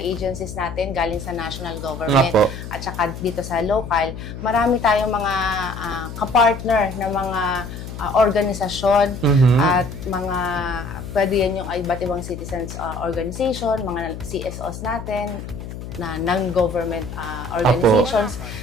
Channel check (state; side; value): noise; left; hum, 10 dB below the sound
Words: agencies natin galing sa national government at saka dito sa local, marami tayong mga kapartner na mga organisasyon at mga pwede yan yung iba't ibang citizens organization, mga CSOs natin, na non-government organizations,